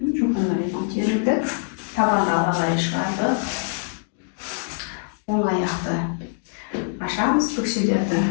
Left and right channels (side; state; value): right; silent; digital silence